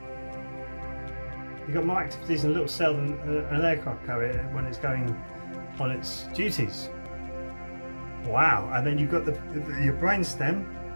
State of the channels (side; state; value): both; inverted; correlation -1.00